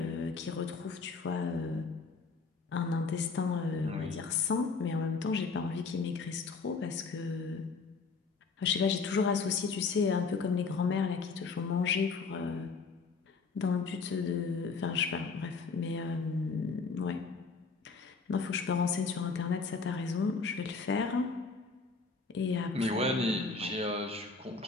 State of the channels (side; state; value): right; quieter; 4.5 dB